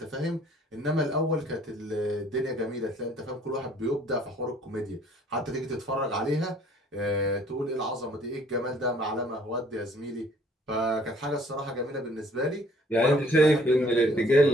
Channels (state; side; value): normal; both; correlation 0.58